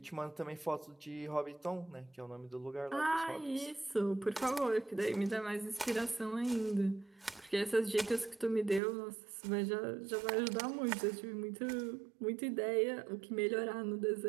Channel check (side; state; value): left; drops out; at 8.8 s